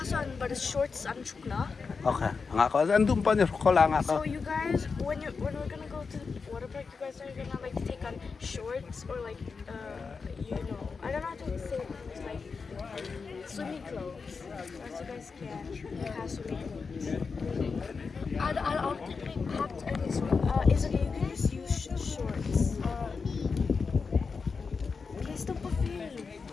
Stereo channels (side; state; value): right; quieter; 5.0 dB